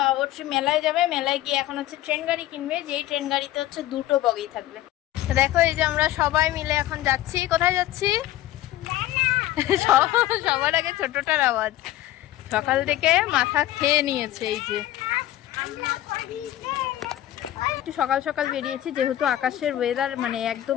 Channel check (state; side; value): quieter; right; 14.2 dB